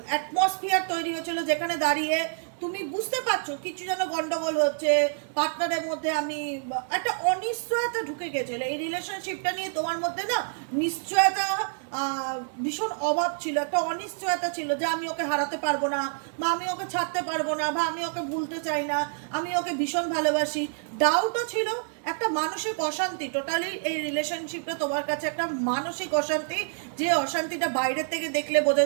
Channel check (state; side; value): silent; left; digital silence